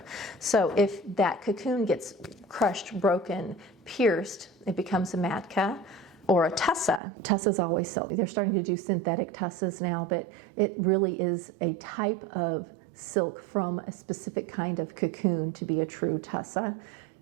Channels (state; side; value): drops out; left; at 7.0 s